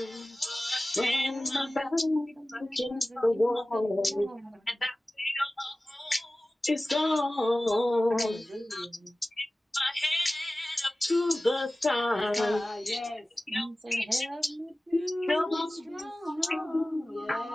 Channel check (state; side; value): normal; both; correlation 0.97